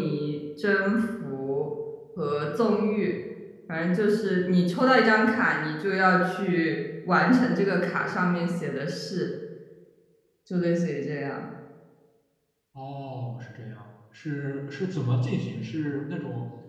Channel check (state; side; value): identical; both; correlation 1.00